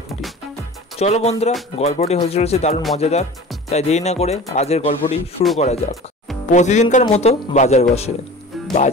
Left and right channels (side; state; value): both; normal; correlation 0.39